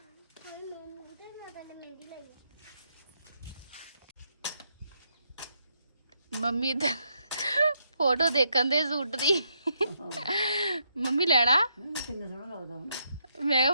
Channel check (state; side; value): inverted; both; correlation -0.77